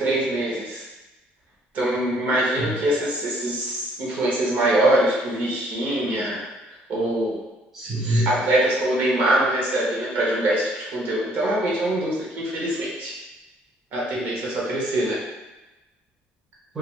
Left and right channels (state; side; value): normal; both; correlation 0.63